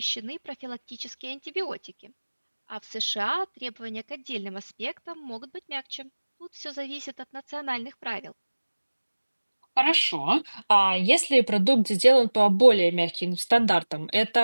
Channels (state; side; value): inverted; both; correlation -1.00